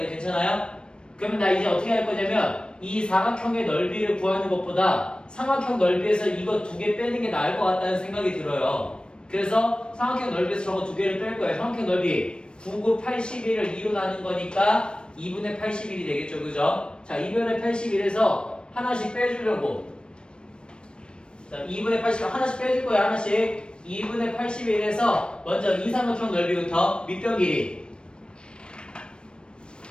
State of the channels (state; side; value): late; right; 0.054 ms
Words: 괜찮아요? 그러면 나 이제 어떻게 할 거냐면 이 사각형의 넓이를 구하는 것보다 삼각형 넓이에서 이거 두 개 빼는 게 나을 것 같다는 생각이 들어요. 그래서 삼각형 넓이에서 저거 두 개를 뺄 거예요. 삼각형 넓이 9, 9, 81을 2로 나눈 거니까 2분의 81이 되겠죠, 그죠? 자, 2분의 81에서 하나씩 빼주려고. 자, 2분의 81 하나씩 빼줄 거예요, 하나씩. 2분의 81에서 먼저 이 삼각형 넓이부터 밑변 길이